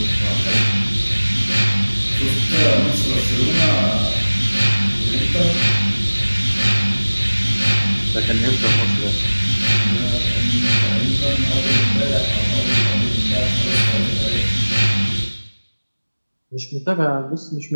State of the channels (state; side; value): inverted; both; correlation -1.00